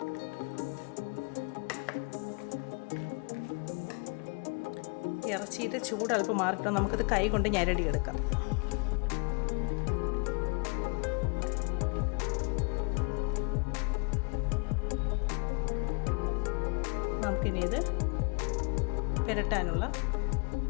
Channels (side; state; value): right; quieter; 34.0 dB